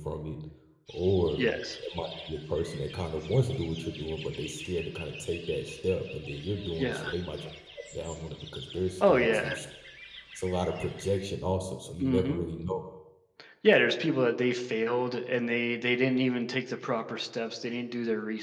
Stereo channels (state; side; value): identical; both; correlation 1.00